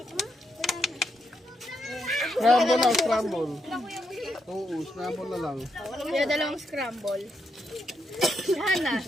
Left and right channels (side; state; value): both; normal; correlation 0.80